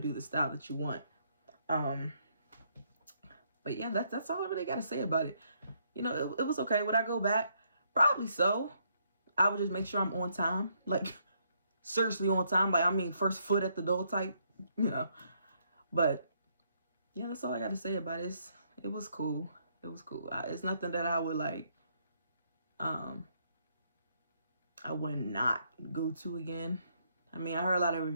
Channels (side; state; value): both; inverted; correlation -0.72